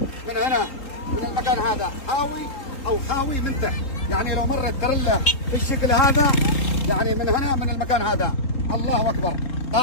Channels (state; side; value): late; right; 3.8 ms